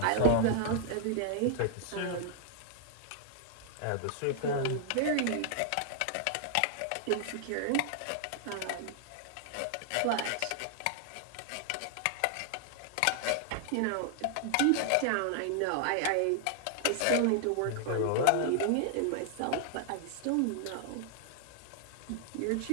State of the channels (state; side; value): different; both; correlation -0.01